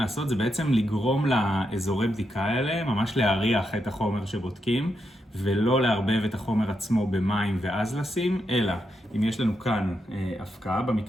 זה בעצם לגרום לאזורי בדיקה האלה, ממש להריח את החומר שבודקים, ולא לערבב את החומר עצמו במים ואז לשים, אלא אם יש לנו כאן הפקעה,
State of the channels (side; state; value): both; normal; correlation 0.83